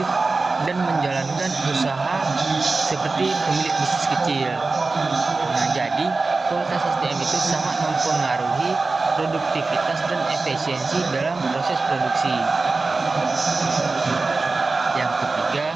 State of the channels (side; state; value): left; quieter; 3.7 dB